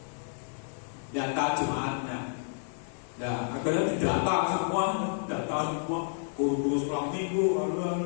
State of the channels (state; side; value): silent; right; 58 dB below the other